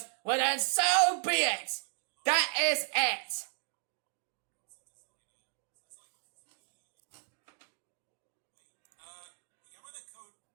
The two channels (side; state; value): left; silent; digital silence